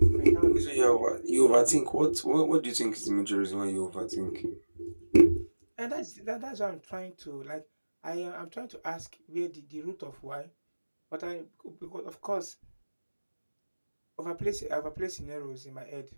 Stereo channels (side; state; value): both; inverted; correlation -1.00